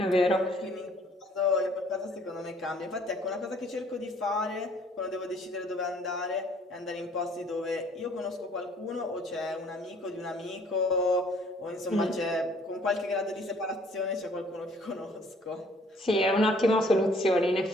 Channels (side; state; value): both; normal; correlation 0.59